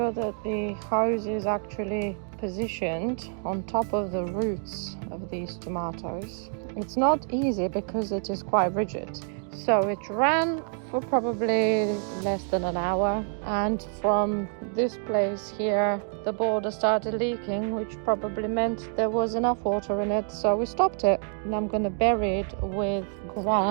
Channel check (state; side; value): silent; left; 57 dB below the other